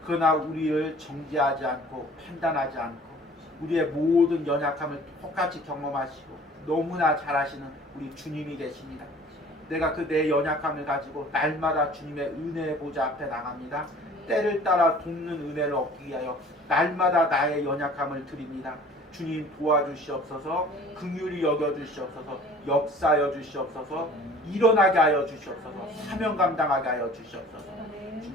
그러나 우리를 정죄하지 않고 판단하지 않고 우리의 모든 연약함을 똑같이 경험하시고 너무나 잘하시는 우리 주님이 계십니다. 내가 그 내 연약함을 가지고 날마다 주님의 은혜의 보좌 앞에 나갑니다. 때를 따라 돕는 은혜를 얻기 위하여 날마다 나의 연약함을 드립니다. 주님 도와주시옵소서. 긍휼히 여겨주시옵소서. 역사하여 주시옵소서. 일어나게 하여 주시옵소서. 사명 감당하게 하여 주시옵소서.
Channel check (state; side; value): normal; both; correlation 0.49